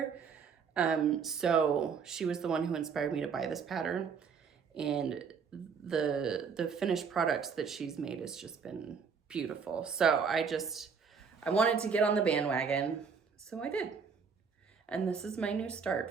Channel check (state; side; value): quieter; left; 6.0 dB